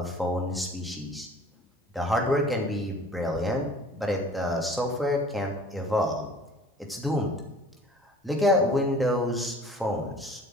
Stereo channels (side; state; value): both; normal; correlation 0.48